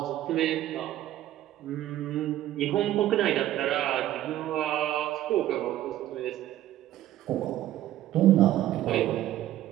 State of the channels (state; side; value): quieter; left; 13.5 dB